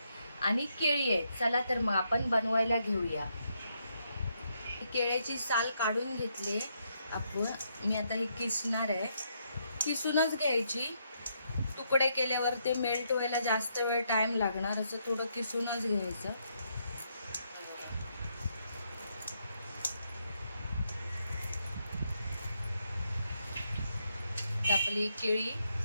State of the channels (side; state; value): both; inverted; correlation -0.77